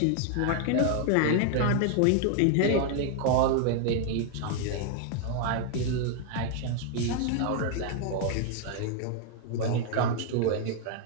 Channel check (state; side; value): different; both; correlation 0.00